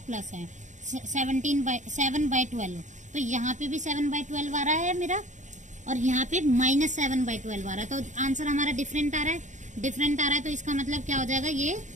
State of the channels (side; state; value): left; late; 0.35 ms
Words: प्लस है। 7/12, तो यहाँ पे भी 7/12 आ रहा है मेरा, और यहाँ पे -7/12 आ रहा है। तो आंसर हमारा डिफरेंट आ रहा है, तो इसका मतलब क्या हो जाएगा, ये